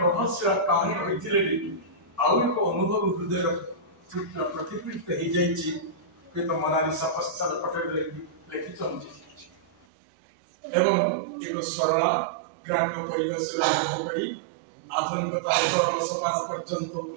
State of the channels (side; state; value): left; drops out; at 9.9 s